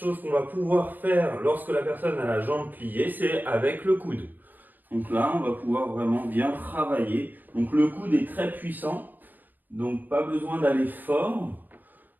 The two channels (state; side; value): late; left; 0.089 ms